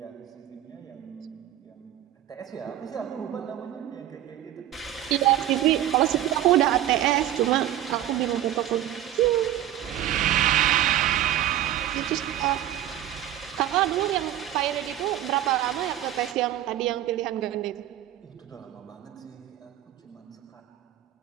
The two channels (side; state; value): left; quieter; 12.5 dB